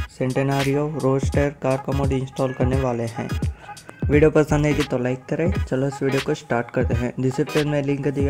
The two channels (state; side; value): identical; both; correlation 1.00